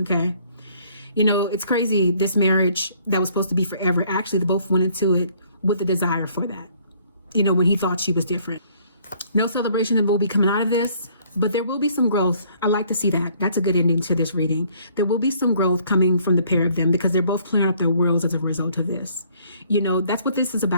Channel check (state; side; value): inverted; both; correlation -0.62